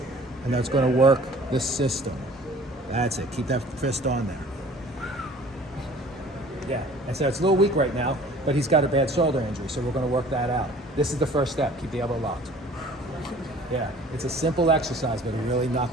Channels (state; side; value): normal; both; correlation 0.49